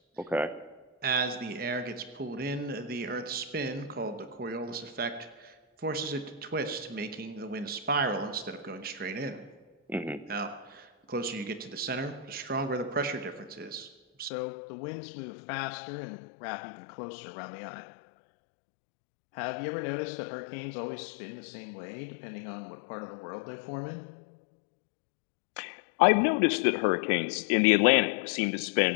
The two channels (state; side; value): drops out; right; at 14.3 s